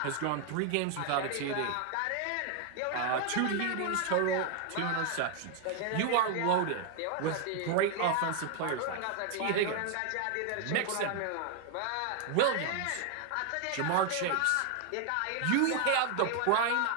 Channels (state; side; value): different; both; correlation 0.00